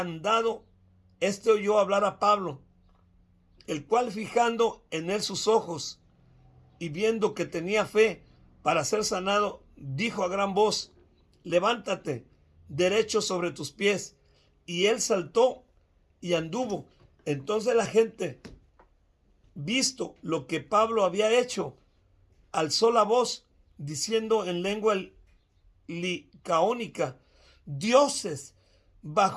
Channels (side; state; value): both; identical; correlation 1.00